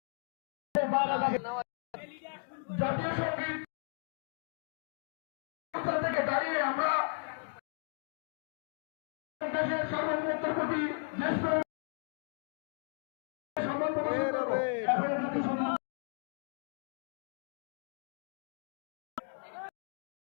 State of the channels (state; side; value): silent; right; 54 dB below the other